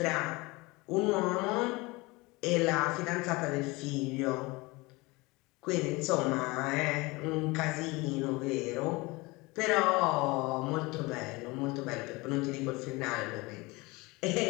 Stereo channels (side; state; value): right; quieter; 23.8 dB